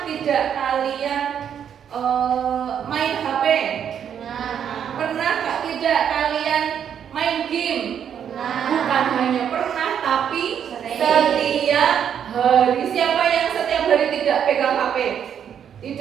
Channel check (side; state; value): left; quieter; 8.6 dB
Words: tidak kalian main HP? Pernah tidak kalian main game? Bukan hanya pernah, tapi setiap hari. Siapa yang setiap hari tidak pegang HP?